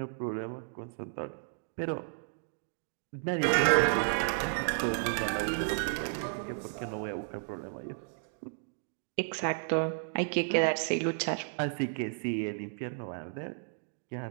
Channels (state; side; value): silent; left; digital silence